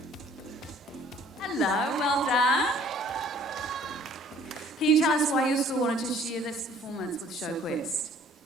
Hello, well done. Can you tell us why your school wanted to share this performance with Showquest?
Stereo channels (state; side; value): normal; both; correlation 0.55